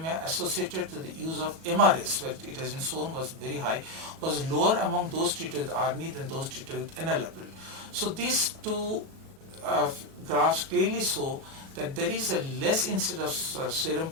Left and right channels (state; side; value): late; left; 37 ms